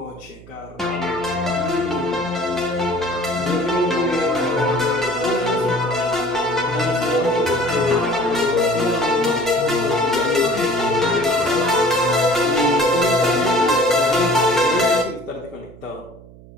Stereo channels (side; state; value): right; noise; hum, 21 dB below the sound